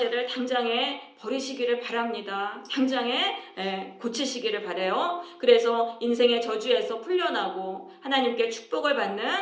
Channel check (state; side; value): identical; both; correlation 1.00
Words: 당장에 버리시기를 바랍니다. 당장에 고치시기를 바라요. 그래서 인생의 저주에서 풀려나고 하나님께 축복을 받는